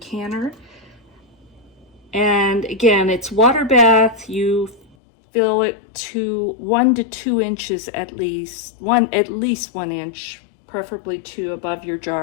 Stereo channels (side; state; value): right; drops out; at 5.0 s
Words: And again, it's water bath. You fill it to 1 to 2 inches at least 1 inch, preferably 2 above your